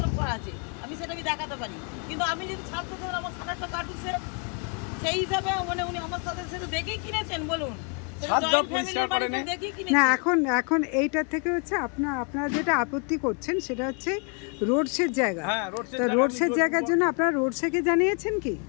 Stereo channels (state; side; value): quieter; right; 37.5 dB